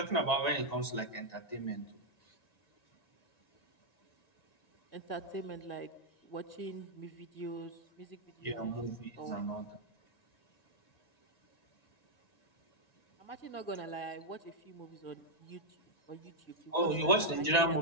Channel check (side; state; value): right; late; 1.9 ms